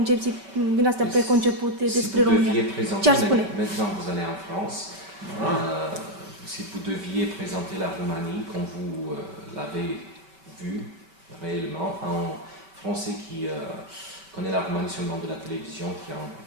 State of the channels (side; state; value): left; late; 5.3 ms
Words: din astea preconcepute despre România. Ce ar spune? Maintenant vous allez en France. Si vous deviez présenter la Roumanie comme vous l'avez vu réellement, un Français qui connaît la Roumanie seulement de la télévision, qui a un